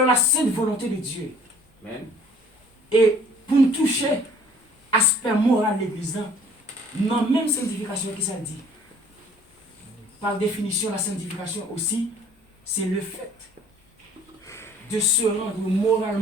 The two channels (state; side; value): normal; both; correlation 0.54